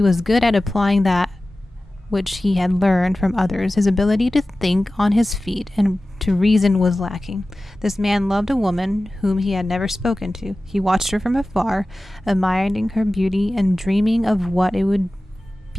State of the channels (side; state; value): both; normal; correlation 0.96